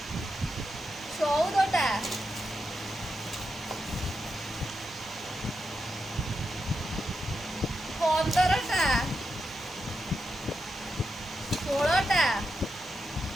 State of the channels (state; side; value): normal; both; correlation 0.86